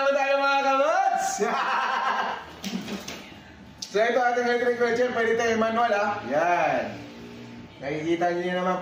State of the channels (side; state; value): both; identical; correlation 1.00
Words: naman tayo mga kamots. So ito ating electric wheelchair, pwede tayo manual ha. Yan. Nakikita nyo naman